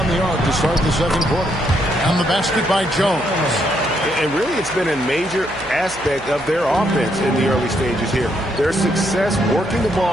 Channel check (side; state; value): right; noise; hum, 19 dB below the sound